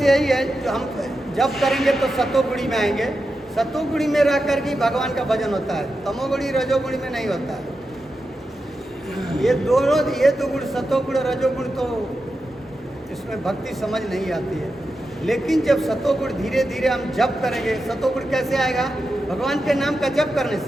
यही है, जो हम जब करेंगे तो सतोगुणी में आएंगे। सतोगुणी में रह कर के भगवान का भजन होता है, तमोगुणी रजोगुणी में नहीं होता है। ये दो गुण सतोगुण रजोगुण तो इसमें भक्ति समझ नहीं आती है। लेकिन जब सतोगुण धीरे धीरे हम जप करेंगे, सतोगुण कैसे आएगा? भगवान के नाम का जप करने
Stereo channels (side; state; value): both; normal; correlation 0.89